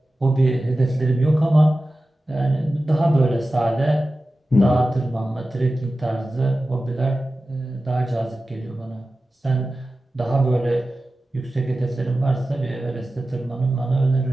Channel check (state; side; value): normal; both; correlation 0.95